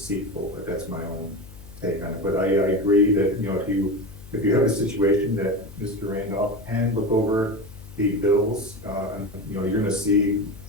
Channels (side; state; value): left; noise; hum, 18 dB below the sound